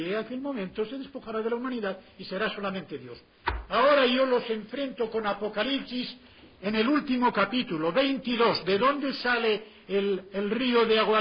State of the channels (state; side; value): identical; both; correlation 1.00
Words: a aquel momento, se despojará de la humanidad y será solamente Dios. Ahora yo los enfrento con Apocalipsis en el último capítulo, 22. ¿De dónde sale el río de agua